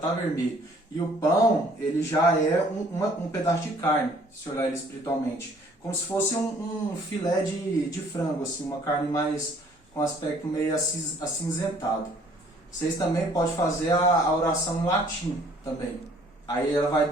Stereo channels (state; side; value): normal; both; correlation 0.59